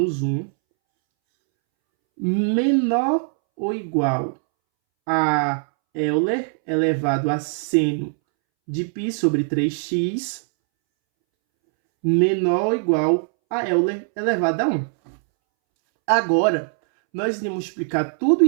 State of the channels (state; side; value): silent; left; 64 dB below the other